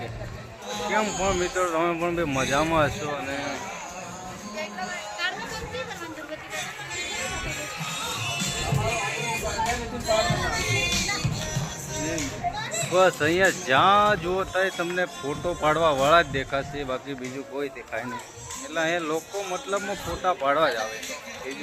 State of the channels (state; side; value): identical; both; correlation 1.00